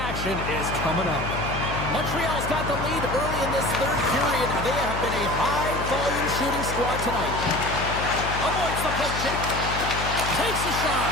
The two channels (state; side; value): noise; left; hum, 6 dB below the sound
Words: is coming up. Montreal's got the lead early in this third period. They have been a high-volume shooting squad tonight. Avoids the poke check. Takes a shot.